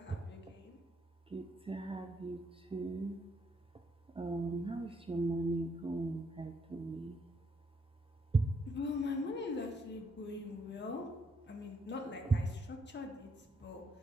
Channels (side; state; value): both; normal; correlation 0.74